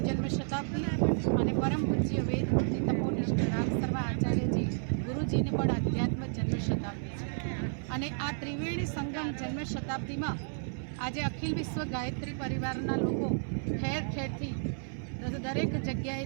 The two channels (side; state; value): left; silent; 57 dB below the other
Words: જન્મ શતાબ્દી અને પરમ પૂજ્ય વેદમૂર્તિ તપોનિષ્ઠ રામ શર્મા આચાર્યજી ગુરુજીને પણ અધ્યાત્મ જન્મ શતાબ્દી છે। અને આ ત્રિવેણી સંગમ જન્મ શતાબ્દીમાં આજે અખિલ વિશ્વ ગાયત્રી પરિવારના લોકો ઠેર ઠેરથી દરેક